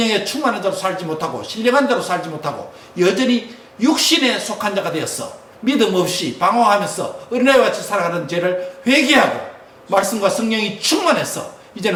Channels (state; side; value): identical; both; correlation 1.00